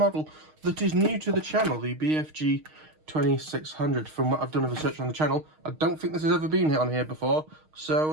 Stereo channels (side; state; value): left; late; 6.4 ms